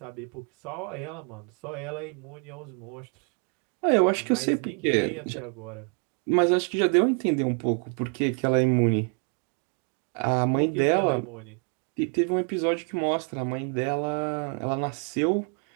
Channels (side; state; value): left; quieter; 39.2 dB